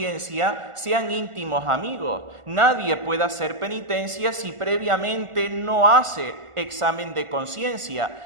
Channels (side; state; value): left; late; 1.4 ms